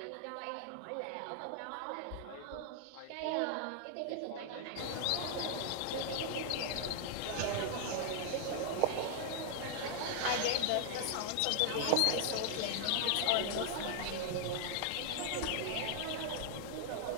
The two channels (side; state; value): both; different; correlation 0.00